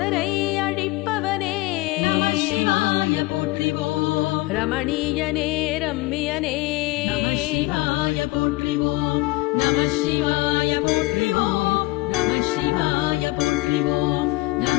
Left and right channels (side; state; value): right; quieter; 21.3 dB